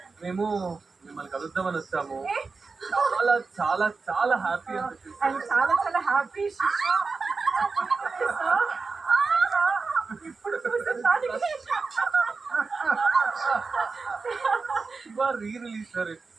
మేము మిమ్మల్ని కలుద్దామని వచ్చాము. చాలా చాలా చాలా హ్యాపీ అండ్ చాలా చాలా హ్యాపీ. ఇప్పుడు రీ రిలీజ్ సార్.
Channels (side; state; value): left; quieter; 4.4 dB